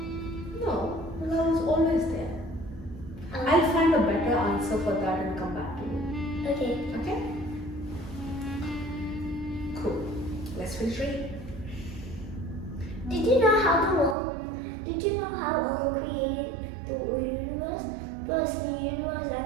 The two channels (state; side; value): drops out; left; at 14.2 s